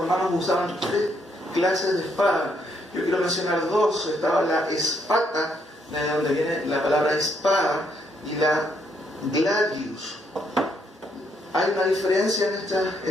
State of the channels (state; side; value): normal; both; correlation 0.73